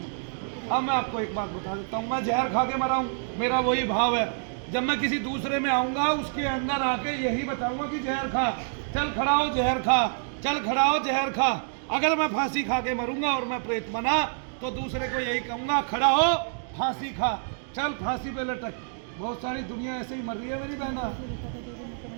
अब मैं आपको एक बात बता देता हूँ, मैं जहर खा के मरा हूँ, मेरा वही भाव है। जब मैं किसी दूसरे में आऊँगा उसके अंदर आके यही बताऊँगा कि जहर खा, चल खड़ा हो जहर खा, चल खड़ा हो जहर खा। अगर मैं फांसी खा के मरूंगा और मैं प्रेत बना तो दूसरे को यही कहूँगा, खड़ा हो फांसी खा, चल फांसी पे लटक। बहुत सारी दुनिया ऐसे ही मर रही है मेरी बहना।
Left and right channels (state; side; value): silent; left; digital silence